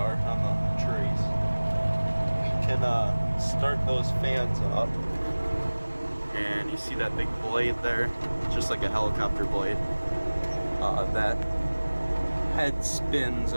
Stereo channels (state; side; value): inverted; both; correlation -1.00